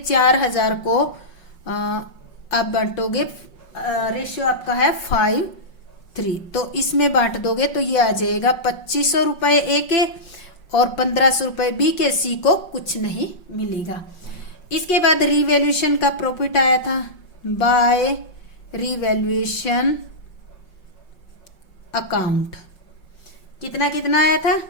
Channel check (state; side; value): late; right; 5.5 ms